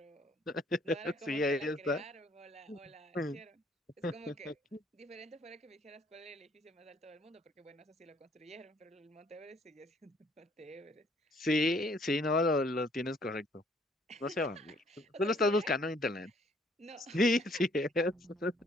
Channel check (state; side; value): normal; both; correlation 0.63